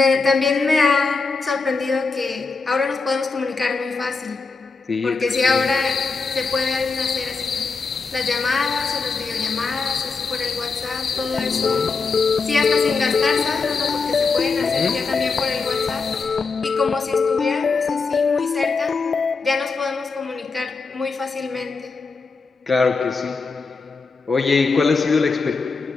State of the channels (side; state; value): right; quieter; 4.4 dB